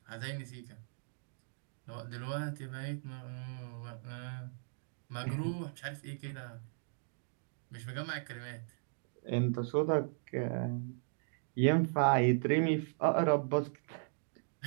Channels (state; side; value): silent; left; digital silence